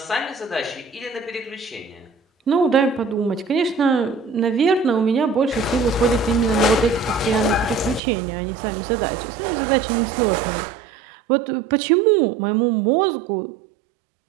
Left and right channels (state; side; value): drops out; left; at 8.0 s